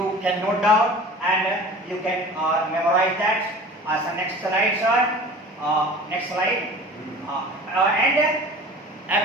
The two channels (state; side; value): normal; both; correlation 0.41